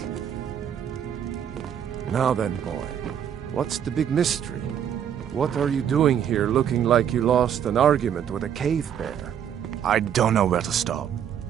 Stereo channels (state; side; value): quieter; left; 9.1 dB